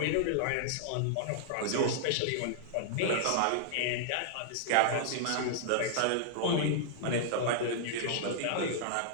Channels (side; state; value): both; different; correlation -0.01